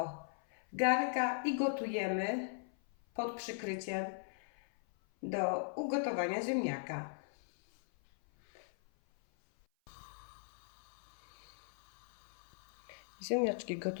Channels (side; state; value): right; silent; 52 dB below the other